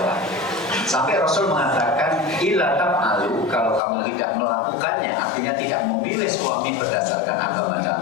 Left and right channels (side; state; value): right; drops out; at 3.8 s